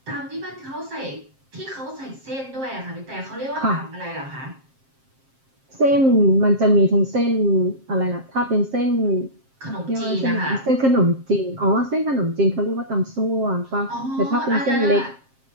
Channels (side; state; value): left; late; 7.5 ms